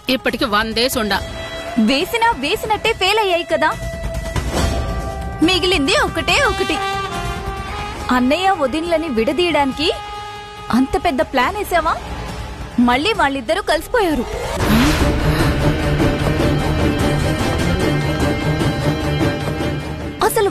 ఇప్పటికి 100 డేస్ ఉండా. వేసినట్టే ఫెయిల్ అయ్యాయి కదా. మిగిలింది ఒకటే ఒకటి. అన్నయ్య వదినలని విడదీయడానికి అంత పెద్ద ప్లాన్ వేసావా? మళ్ళీ వాళ్ళిద్దరూ కలిసిపోయారు. అసలు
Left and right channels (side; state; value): both; identical; correlation 1.00